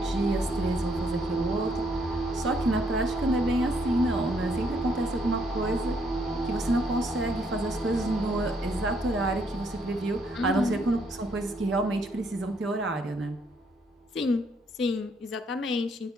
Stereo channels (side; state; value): both; normal; correlation 0.71